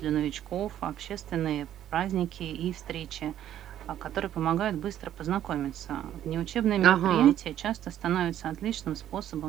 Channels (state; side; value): quieter; left; 11.3 dB